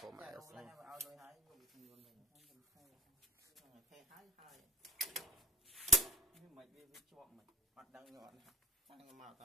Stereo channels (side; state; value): both; normal; correlation 0.48